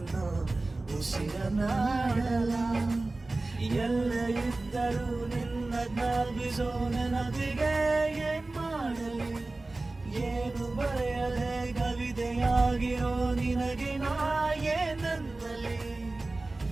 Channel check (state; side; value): quieter; left; 3.1 dB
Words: ಉಸಿರನಾಡಲ. ಎಲ್ಲ ಇದ್ದರೂ ನಿನ್ನ ಜ್ಞಾಪಿಸೋ ನೆನಪಿಗೆ ಏನ್ ಮಾಡಲಿ, ಏನು ಬರೆಯದೆ ಕವಿತೆಯಾಗಿರೋ ನಿನಗೆ ನಾ ಏನಂತಲಿ.